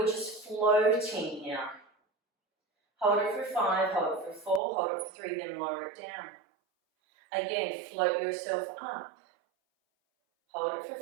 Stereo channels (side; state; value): left; drops out; at 4.6 s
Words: just floating here. Hold it for 5, hold it for 4, hold it for 3, then lower it down. Again, float yourself up. Hold it